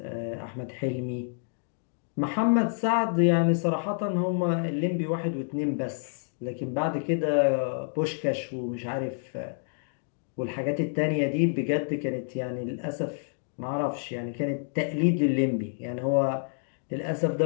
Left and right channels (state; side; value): silent; right; digital silence